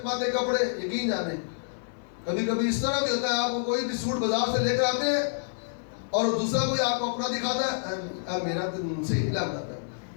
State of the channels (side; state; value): right; silent; 59 dB below the other